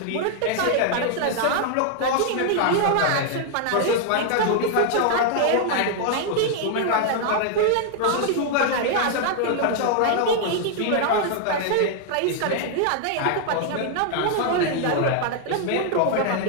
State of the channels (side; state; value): both; different; correlation 0.00